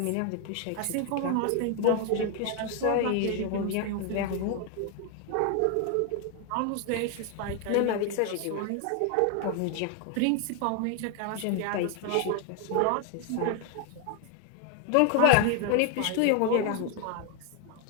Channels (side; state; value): both; different; correlation 0.01